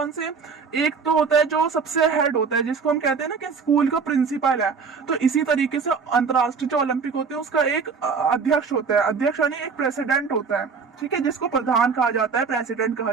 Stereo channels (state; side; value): quieter; left; 5.4 dB